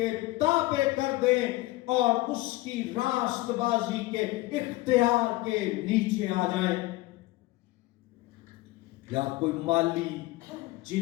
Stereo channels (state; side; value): quieter; right; 19.3 dB